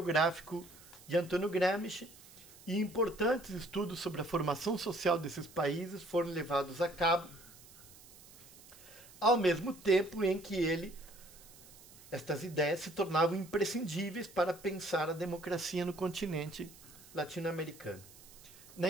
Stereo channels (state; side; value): noise; right; hiss, 21 dB below the sound